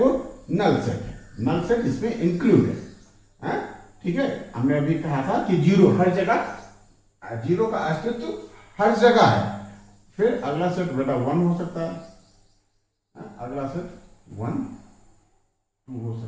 नल सेट है, नल सेट इसमें इंक्लूड है, ठीक है। हमने अभी कहा था कि 0 हर जगह, 0 का अस्तित्व हर जगह है। फिर अगला सेट बेटा 1 हो सकता है, अगला सेट 1, 2 हो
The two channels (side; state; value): both; identical; correlation 1.00